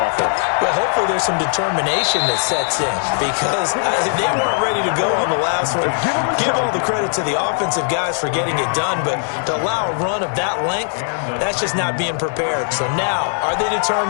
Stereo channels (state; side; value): silent; right; 65 dB below the other